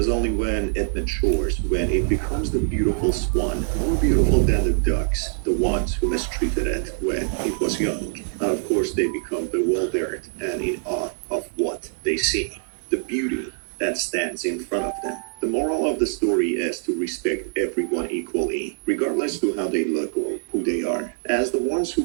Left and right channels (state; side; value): silent; left; 61 dB below the other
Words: only when it matures, when it becomes the beautiful swan, more beautiful than the ducks, the ones who mistreated it when it was young. And of course, they become bewildered and in awe of what they see. The beauty that stands in front of them. The moral of the story is to respect everyone equally, as to how they look or who they are, as the ones who